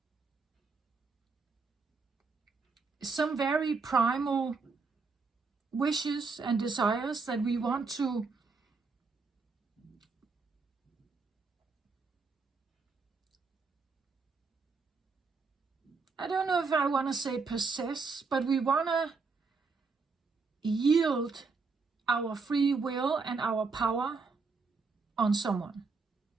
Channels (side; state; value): left; quieter; 4.5 dB